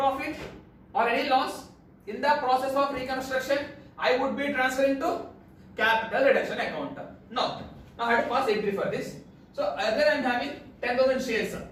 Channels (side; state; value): both; identical; correlation 1.00